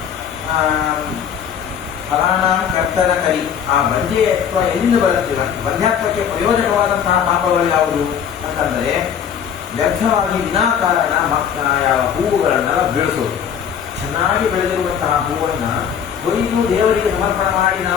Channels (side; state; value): right; quieter; 8.2 dB